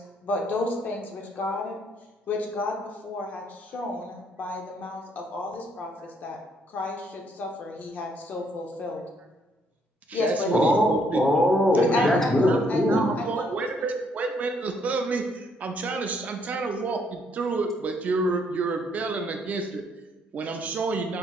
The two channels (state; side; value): normal; both; correlation 0.69